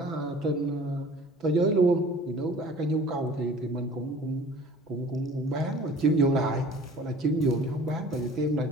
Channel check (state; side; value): normal; both; correlation 0.47